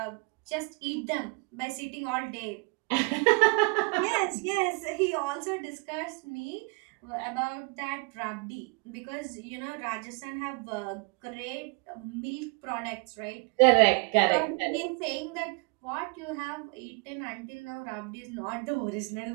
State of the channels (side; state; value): left; quieter; 31.5 dB